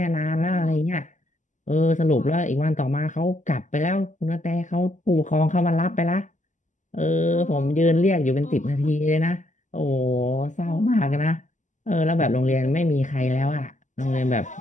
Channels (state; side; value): late; right; 0.36 ms